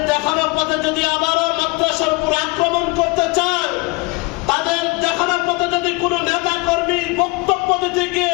দেখানো পথে যদি আবারও মাদ্রাসার উপর আক্রমণ করতে চায়, তাদের দেখানো পথে যদি কোন নেতা কর্মী বক্তব্য দিতে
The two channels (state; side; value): quieter; right; 25.8 dB